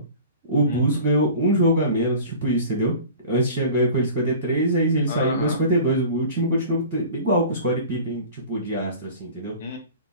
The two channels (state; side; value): inverted; both; correlation -0.41